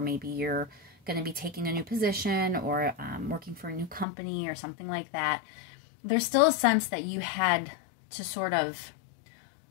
you're going to be taking a new position or working for a new company or something like that, there's still a sense that you had to sort of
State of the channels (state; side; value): drops out; right; at 4.0 s